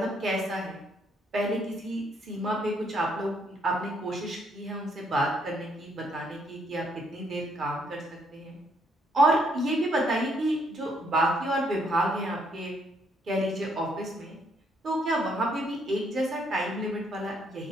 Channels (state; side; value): normal; both; correlation 0.71